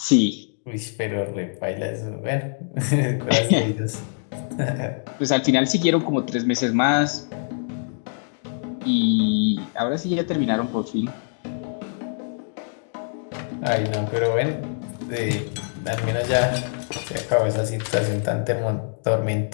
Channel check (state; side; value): silent; right; digital silence